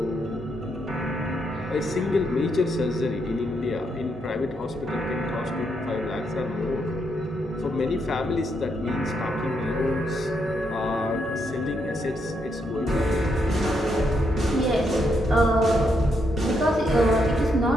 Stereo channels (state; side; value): normal; both; correlation 0.78